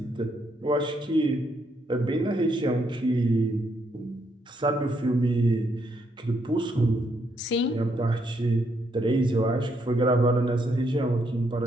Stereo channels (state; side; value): normal; both; correlation 0.75